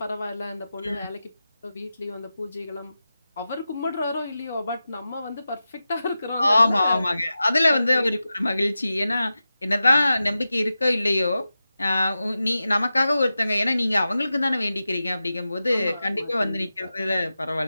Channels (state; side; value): inverted; both; correlation -0.93